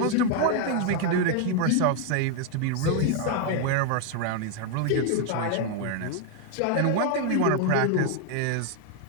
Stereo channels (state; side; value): different; both; correlation 0.00